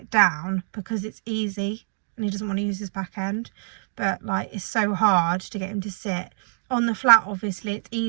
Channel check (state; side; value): silent; left; digital silence